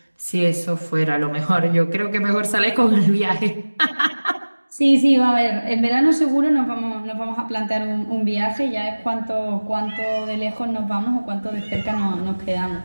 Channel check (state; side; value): inverted; both; correlation -1.00